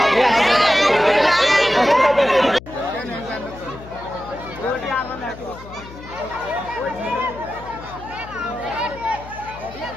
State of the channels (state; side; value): noise; left; hum, 17 dB below the sound